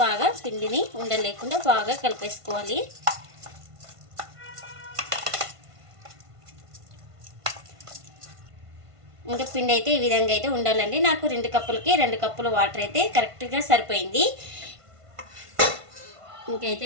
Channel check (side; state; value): left; late; 1.5 ms